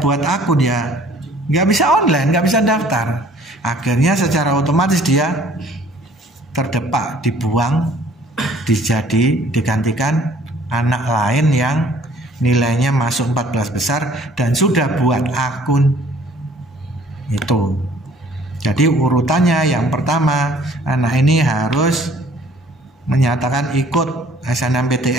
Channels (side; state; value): both; normal; correlation 0.56